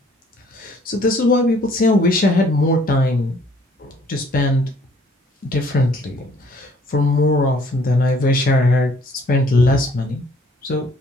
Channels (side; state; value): both; normal; correlation 0.60